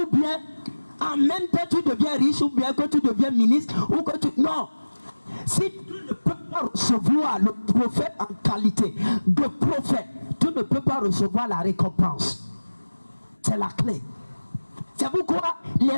bien en même temps tu deviens riche, ou bien que tu deviens ministre, ou que tu... Non. Si tu ne peux pas recevoir le prophète en qualité de prophète, tu ne peux pas recevoir la récompense. C'est la clé. C'est pourquoi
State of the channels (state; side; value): inverted; both; correlation -1.00